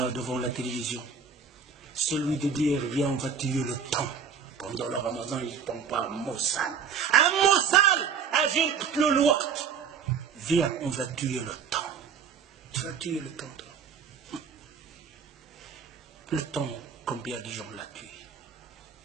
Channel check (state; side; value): quieter; left; 6.5 dB